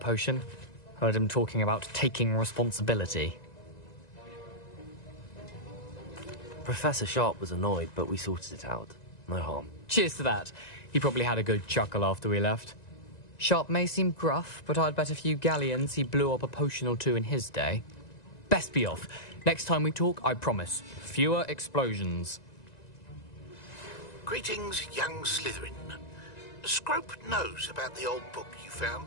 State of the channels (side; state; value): right; late; 1.9 ms